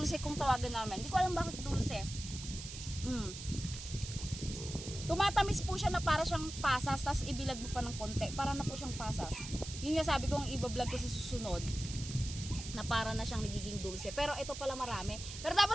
kung tawagan namin. Hindi ko alam bakit dulce. Tumatamis po siya na para siyang pasas, tapos ibilad mo pa ng konti, para na po siyang pasas. Yun nga sabi ko, ang ibablog ko sa susunod, na para na siyang nagiging dulce. Pero ito pala marami. Pero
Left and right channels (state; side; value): noise; right; hiss, 10 dB below the sound